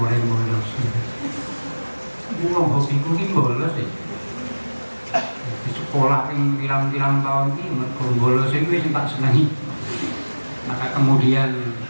bolos. Wong hobiku ki bolos ya. Di sekolah ping pirang-pirang tahun iki mergo bolos iku wis tak senengi. Maka kemudian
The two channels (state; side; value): inverted; both; correlation -1.00